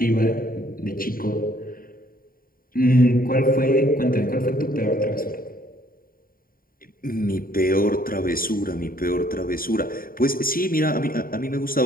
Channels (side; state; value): right; late; 0.42 ms